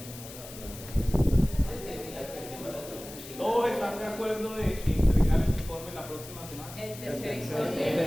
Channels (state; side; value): noise; left; hiss, 14 dB below the sound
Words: ¿Todos están de acuerdo de entregar el informe la próxima semana? El tercer El